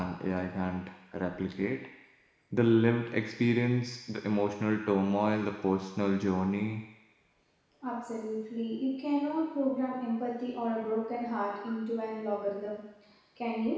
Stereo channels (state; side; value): identical; both; correlation 1.00